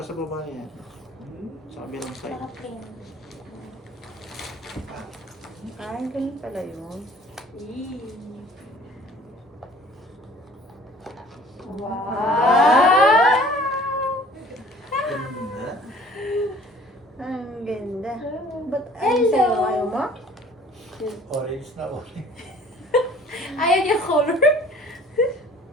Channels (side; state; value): both; normal; correlation 0.51